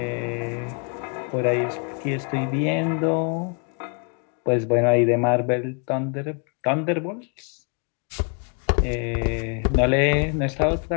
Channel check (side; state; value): right; quieter; 38.7 dB